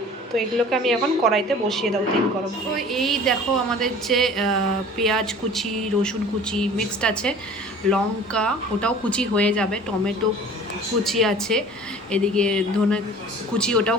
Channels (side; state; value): both; normal; correlation 0.45